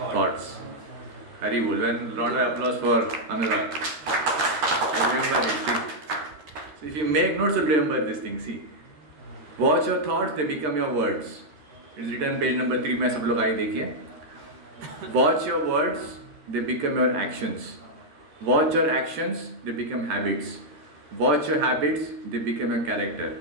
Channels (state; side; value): late; left; 13 ms